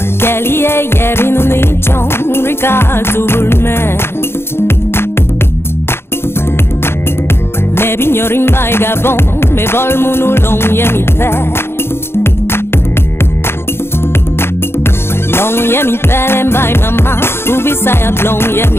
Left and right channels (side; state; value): right; late; 0.12 ms